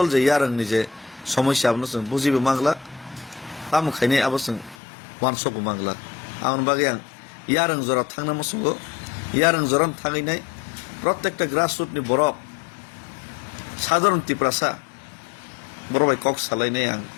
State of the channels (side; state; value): right; drops out; at 4.8 s